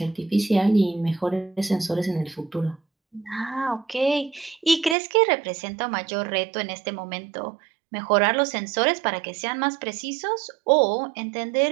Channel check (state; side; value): drops out; left; at 5.0 s